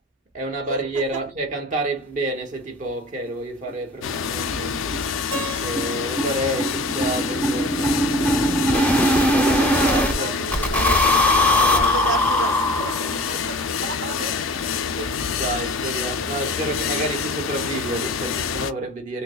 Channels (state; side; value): normal; both; correlation 0.41